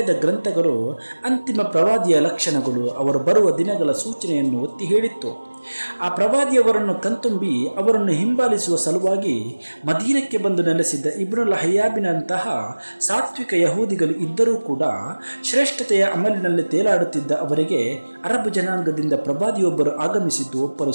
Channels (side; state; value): both; inverted; correlation -1.00